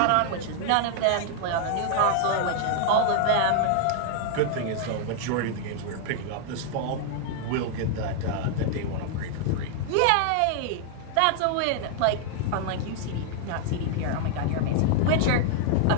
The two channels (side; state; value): both; different; correlation 0.00